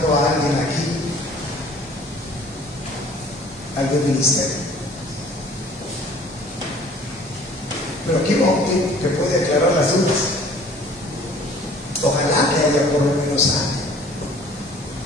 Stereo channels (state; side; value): normal; both; correlation 0.52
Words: a alguien aquí, algún ministerio. Pero aquí Octi que puede aclarar las dudas. Ojalá que haya por lo menos alguien.